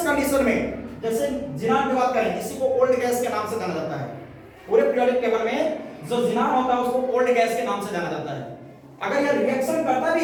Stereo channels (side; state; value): both; identical; correlation 1.00